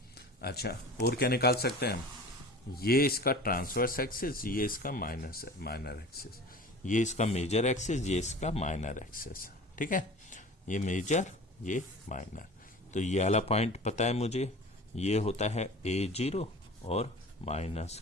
अच्छा, और क्या निकाल सकते हैं हम, ये इसका ट्रांसवर्स एक्सिस, ये इसका माइनर एक्सिस, ये इसका मेजर एक्सिस, ये इसका माइनर एक्सिस, ठीक है। ये मेजर, ये माइनर। तो ये वाला पॉइंट पता है मुझे, ये होता है A0 और माइनस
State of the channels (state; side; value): normal; both; correlation 0.39